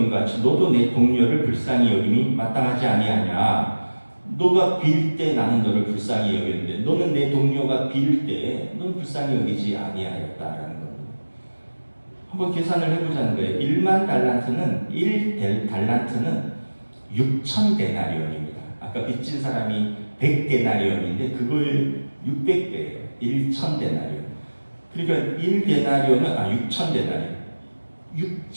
같이 너도 내 동료를 불쌍히 여김이 마땅하지 아니하냐. 너가 빌 때 나는 너를 불쌍히 여겼는데 너는 내 동료가 빌 때 너는 불쌍히 여기지 아니하였다라는 겁니다. 한번 계산을 해보자는 거예요. 10,000달란트는 1달란트는 6,000데나리온입니다. 아까 빚진 사람이 100데나리온인데 그걸 600배예요. 1,000데나리온. 그러니까 1데나리온은 6,000데나리온.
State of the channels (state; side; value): inverted; both; correlation -1.00